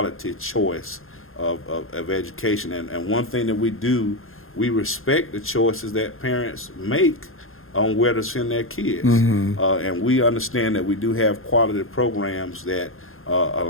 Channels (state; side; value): late; right; 0.61 ms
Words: choice of education. And one thing that we do, we respect the choices that parents make on where to send their kids. And we understand that we do have quality programs that a